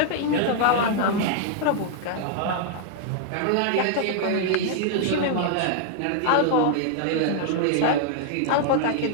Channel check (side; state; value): both; different; correlation -0.01